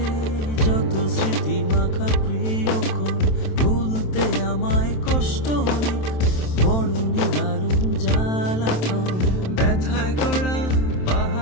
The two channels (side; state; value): right; late; 27 ms